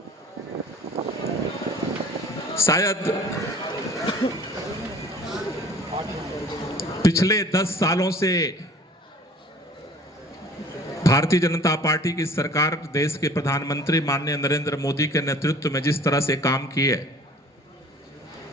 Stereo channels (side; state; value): both; normal; correlation 0.49